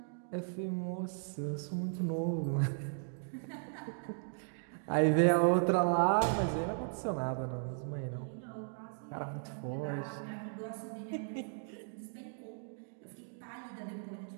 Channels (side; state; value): left; silent; digital silence